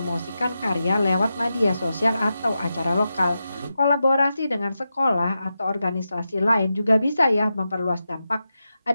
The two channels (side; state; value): both; inverted; correlation -0.90